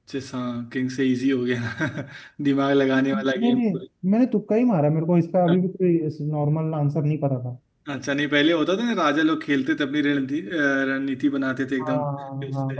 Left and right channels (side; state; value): both; identical; correlation 1.00